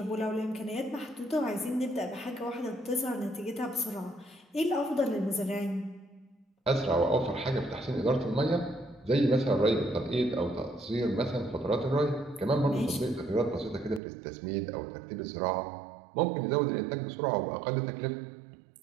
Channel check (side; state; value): left; drops out; at 14.0 s